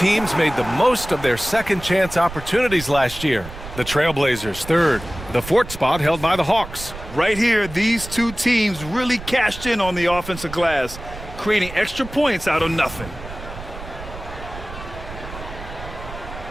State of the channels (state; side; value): noise; right; rumble, 13 dB below the sound